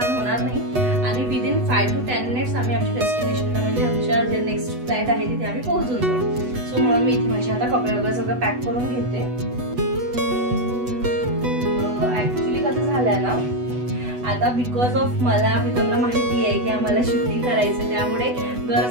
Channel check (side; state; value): left; late; 8.1 ms